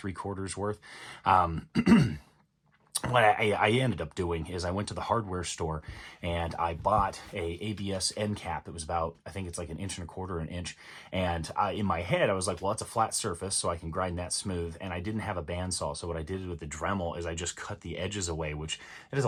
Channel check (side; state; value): both; identical; correlation 1.00